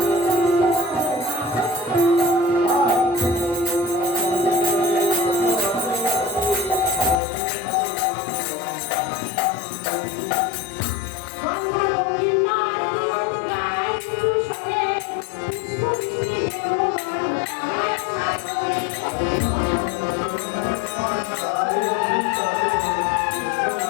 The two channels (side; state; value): right; drops out; at 7.2 s